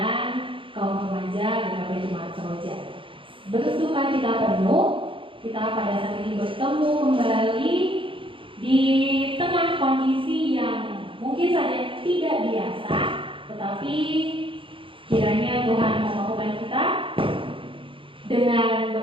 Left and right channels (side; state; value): left; late; 0.25 ms